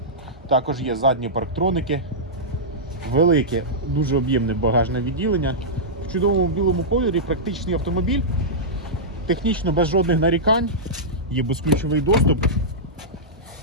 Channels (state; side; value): normal; both; correlation -0.13